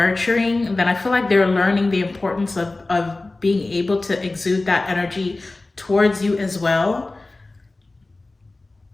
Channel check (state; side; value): quieter; right; 3.1 dB